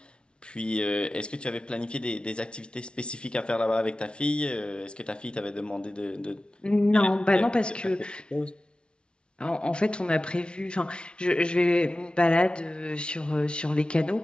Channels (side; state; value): right; late; 0.057 ms